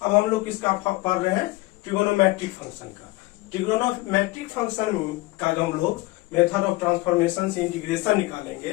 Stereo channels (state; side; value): quieter; right; 20.9 dB